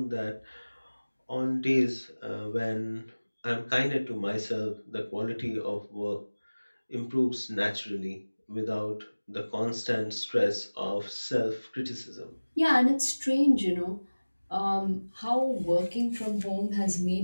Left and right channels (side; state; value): both; inverted; correlation -1.00